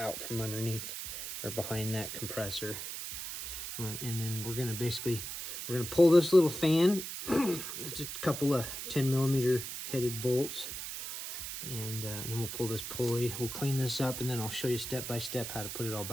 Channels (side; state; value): right; noise; hiss, 6 dB below the sound